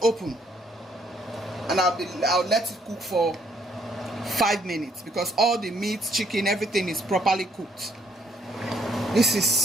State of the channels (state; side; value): normal; both; correlation 0.68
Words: open and I'll let it cook for 5 minutes because all the meat, chicken, everything is properly cooked. This